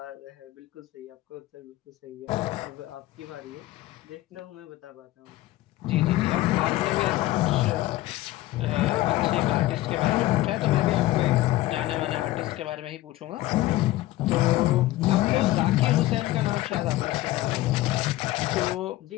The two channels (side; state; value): right; quieter; 16.7 dB